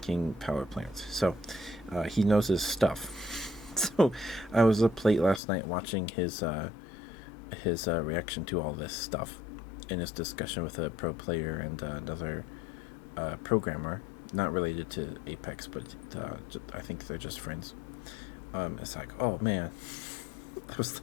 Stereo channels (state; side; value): drops out; right; at 5.4 s